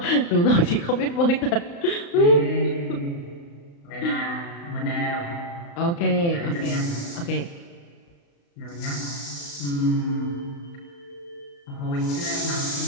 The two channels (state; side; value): late; right; 35 ms